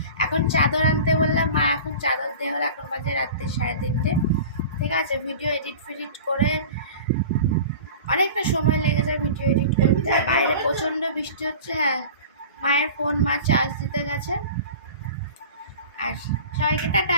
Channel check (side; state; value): both; inverted; correlation -0.37